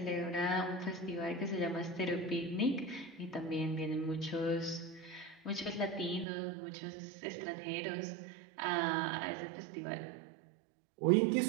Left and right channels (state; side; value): drops out; left; at 6.2 s